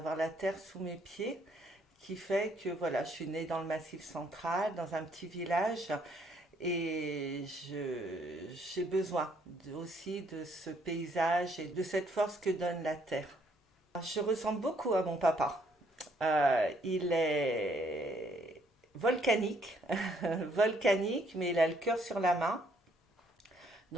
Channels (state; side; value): normal; both; correlation 0.67